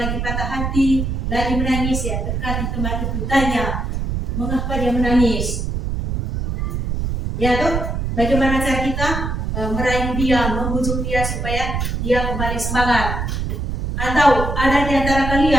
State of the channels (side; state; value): right; noise; rumble, 2 dB below the sound